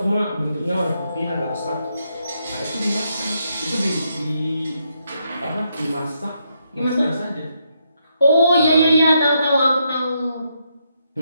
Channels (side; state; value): both; inverted; correlation -0.79